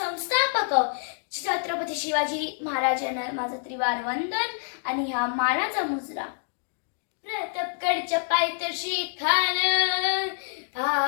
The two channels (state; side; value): silent; right; digital silence